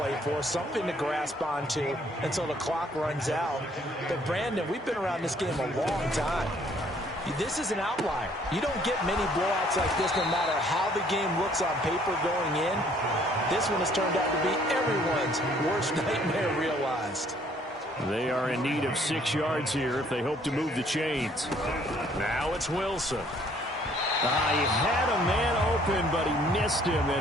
for, something to grasp onto until the clock runs out. But, Brandon, we've been around this game a long time. This is an outlier. You don't get many blowouts like this no matter how the game looks on paper going in. This one has turned out to be everyone's worst nightmare realized. They are in need of 6 yards here if they hope to move the chains. Now it's Wilson. He had a man open, but he missed him,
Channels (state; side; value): normal; both; correlation 0.62